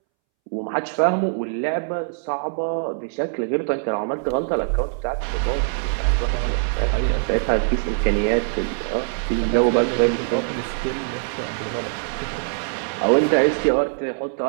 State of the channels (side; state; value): left; silent; 64 dB below the other